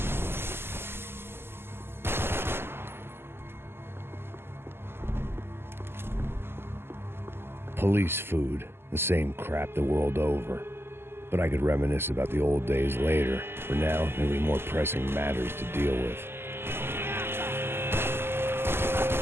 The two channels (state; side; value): late; left; 0.12 ms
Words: Police food, the same crap the world over. But I could reminisce about the old days later. For now, there were more pressing matters to deal with.